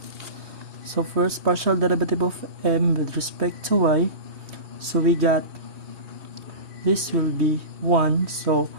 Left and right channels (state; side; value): late; left; 3.2 ms